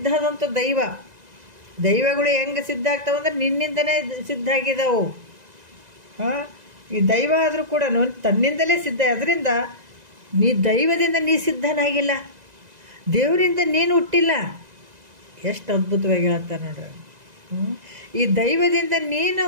ಆದಂಥ ದೈವಗಳು ಹೆಂಗೆ ಸಿದ್ಧ ಆಗ್ತಾವಂದ್ರೆ ನಿನ್ನಿಂದನೇ ಸಿದ್ಧ ಆಗಿದ್ದಾವು. ಈ ದೈವ ಆದರೂ ಕೂಡ ತನ್ನಿಂದಲೇ ಸಿದ್ಧ. ಅದರಿಂದ ನೀ ದೈವದಿಂದ ನೀ ಸಿದ್ಧನಾಗಿಲ್ಲ, ದೇವರಿಂದ ನೀನು ಹುಟ್ಟಿಲ್ಲ. ಎಷ್ಟು ಅದ್ಭುತವಾಗಿ ಹೇಳ್ತಾರೆ ನೋಡ್ರಿ. ಈ ದೈವದಿಂದ ನೀನು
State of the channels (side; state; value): left; late; 2.0 ms